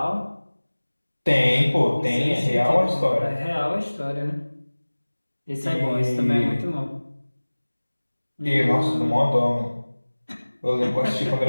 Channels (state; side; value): inverted; both; correlation -1.00